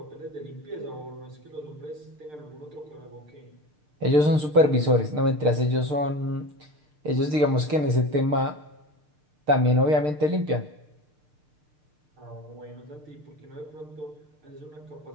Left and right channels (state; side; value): late; left; 6.6 ms